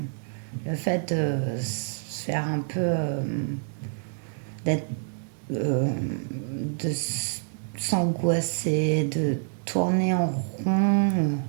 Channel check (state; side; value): silent; left; 60 dB below the other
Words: le fait de se faire un peu, d'être, de s'angoisser, de tourner en rond